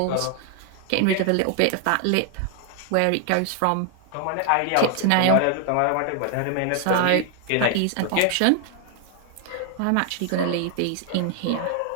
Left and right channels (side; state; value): both; different; correlation 0.00